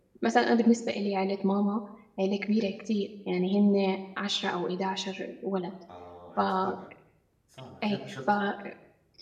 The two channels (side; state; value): both; identical; correlation 1.00